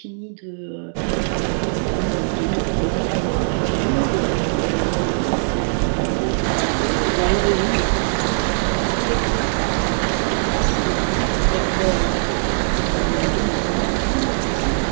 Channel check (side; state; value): left; silent; digital silence